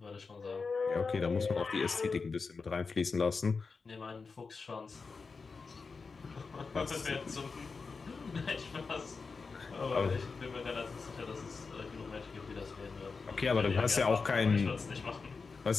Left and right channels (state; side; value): quieter; right; 4.6 dB